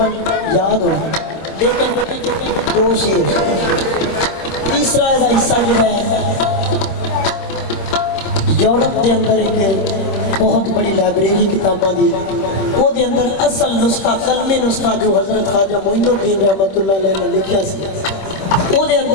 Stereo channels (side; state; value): right; late; 26 ms